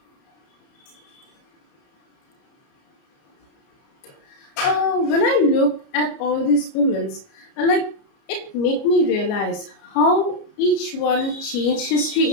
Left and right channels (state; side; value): late; right; 30 ms